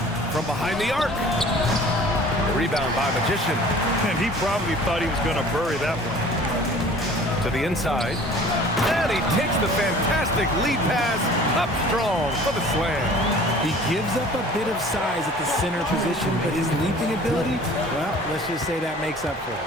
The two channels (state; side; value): normal; both; correlation 0.47